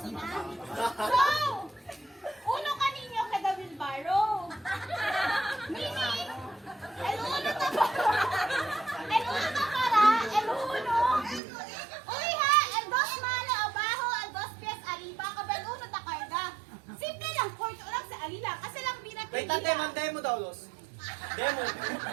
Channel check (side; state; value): left; drops out; at 11.4 s